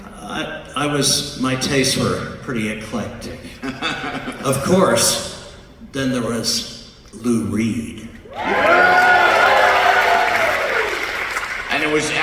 My tastes were pretty eclectic. Of course, then there was Lou Reed. And it was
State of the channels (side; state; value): both; identical; correlation 1.00